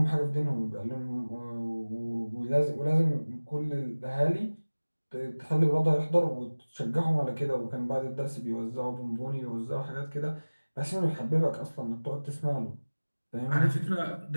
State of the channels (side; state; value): both; inverted; correlation -1.00